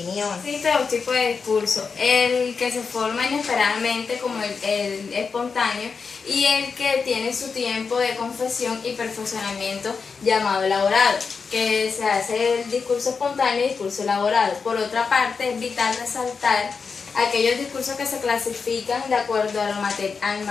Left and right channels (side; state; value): right; quieter; 5.3 dB